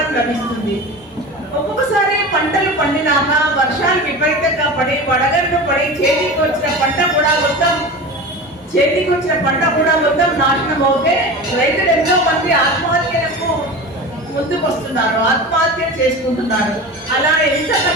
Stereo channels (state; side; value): normal; both; correlation 0.31